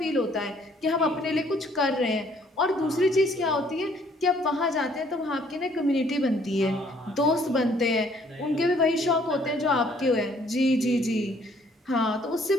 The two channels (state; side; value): normal; both; correlation 0.62